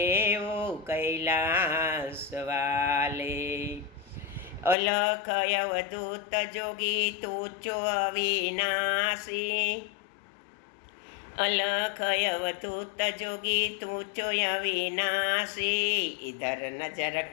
ओ कैलाश वाले। अलख अवधूत जोगी तूचो अविनाशी, अलख अवधूत जोगी तूचो अविनाशी, इधर नजर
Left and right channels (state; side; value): drops out; right; at 4.8 s